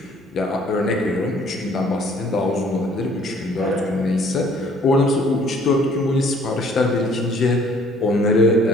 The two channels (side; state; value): both; normal; correlation 0.59